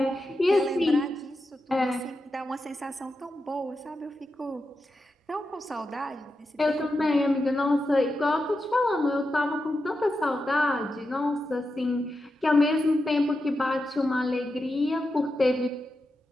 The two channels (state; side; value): normal; both; correlation 0.89